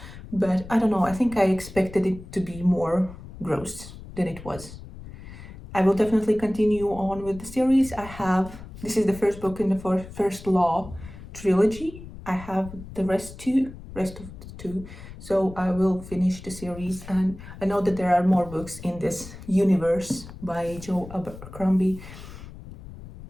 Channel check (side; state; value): left; noise; rumble, 15 dB below the sound